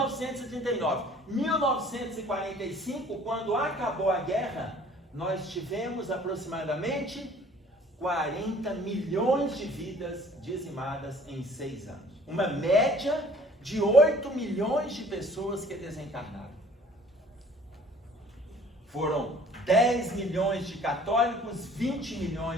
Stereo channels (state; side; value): normal; both; correlation 0.53